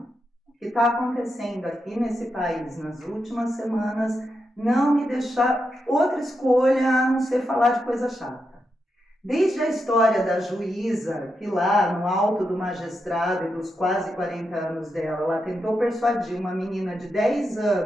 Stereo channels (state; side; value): normal; both; correlation 0.85